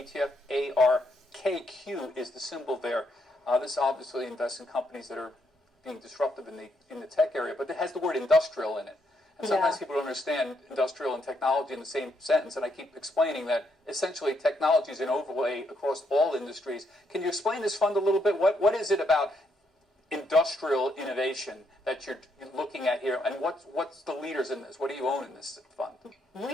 ARKQ is the symbol there. This obviously invests in companies that are being disruptive in the tech area, but it has the word industrial in it. And sometimes people don't understand industrial and technology in the same sentence, and I keep explaining that essentially technology is an overlay across all industries. Can you explain this fund a little bit? What is it about industrial innovation that you're looking at here, and what's the leaders in this? What do you own in this fund?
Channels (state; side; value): normal; both; correlation 0.76